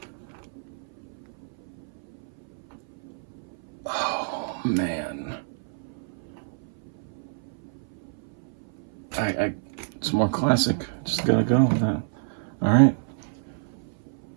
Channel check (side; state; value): left; silent; 57 dB below the other